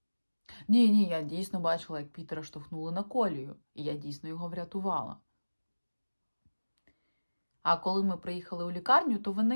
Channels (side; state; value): both; inverted; correlation -1.00